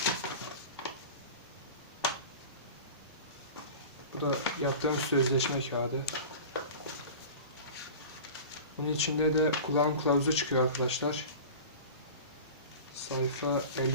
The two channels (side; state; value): both; inverted; correlation -0.35